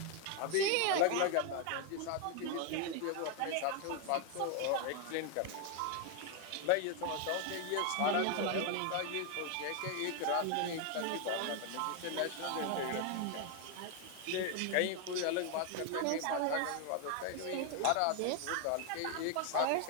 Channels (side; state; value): both; different; correlation 0.00